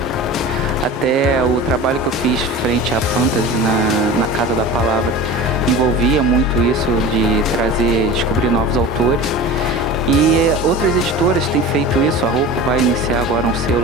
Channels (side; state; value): both; normal; correlation 0.34